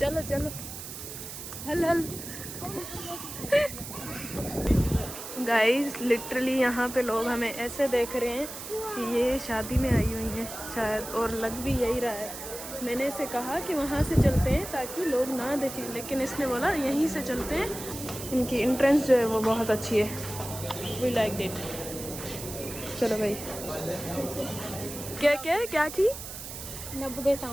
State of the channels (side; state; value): right; noise; hiss, 10 dB below the sound